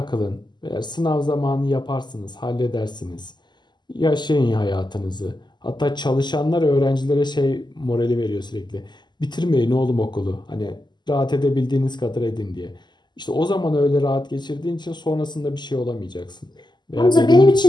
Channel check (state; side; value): late; right; 0.21 ms